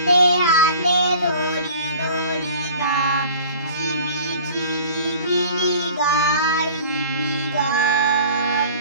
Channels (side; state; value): both; inverted; correlation -0.46